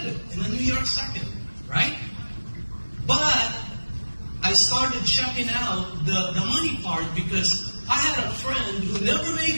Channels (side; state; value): both; inverted; correlation -1.00